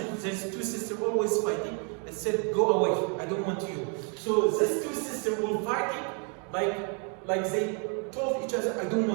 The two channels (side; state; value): left; quieter; 38.5 dB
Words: there's two sisters always fighting. It said, go away, I don't want you. So these two sisters will fighting, like they told each other, I don't